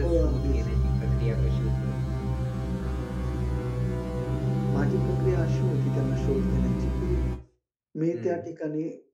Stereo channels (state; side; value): identical; both; correlation 1.00